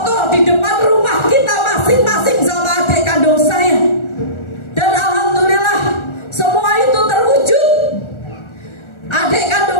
di depan rumah kita masing-masing sama adik kandung saya. Dan alhamdulillah semua itu terwujud. Adik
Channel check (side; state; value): right; late; 1.4 ms